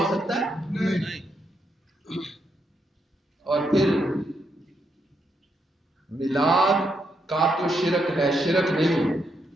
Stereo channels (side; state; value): both; normal; correlation 0.79